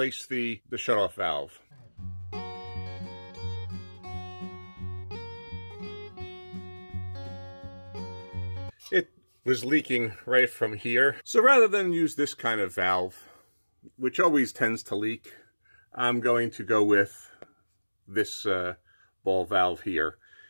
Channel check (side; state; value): both; inverted; correlation -1.00